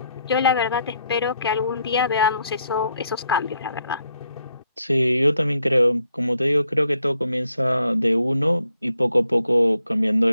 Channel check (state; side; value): inverted; both; correlation -0.75